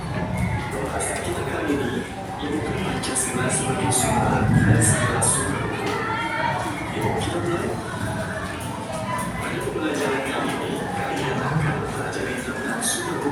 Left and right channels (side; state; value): both; identical; correlation 1.00